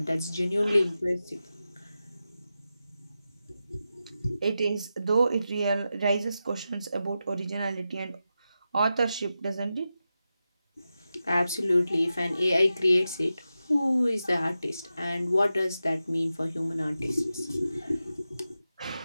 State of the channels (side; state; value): both; inverted; correlation -0.91